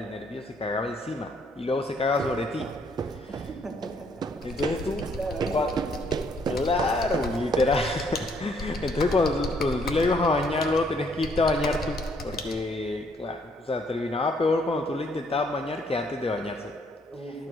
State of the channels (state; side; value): normal; both; correlation 0.68